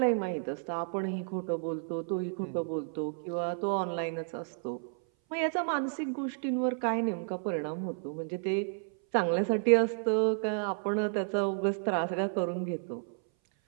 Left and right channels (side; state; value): left; silent; 57 dB below the other